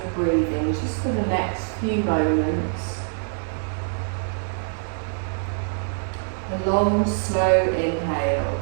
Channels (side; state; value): left; silent; digital silence